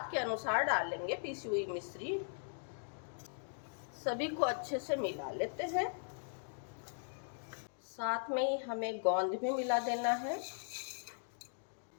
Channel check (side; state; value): right; silent; digital silence